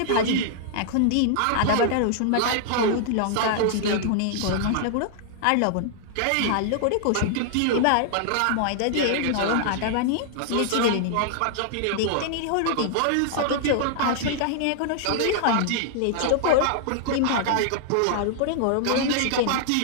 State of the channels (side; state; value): both; different; correlation -0.01